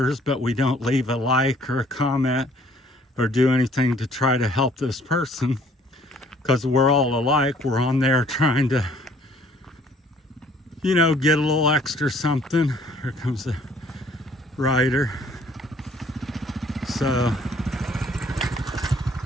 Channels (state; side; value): normal; both; correlation 0.59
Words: but we don't leave a like or a comment or do anything to try to help this person, because we're all alike. We're on there trying to, get a little extra something. Here comes the rider. So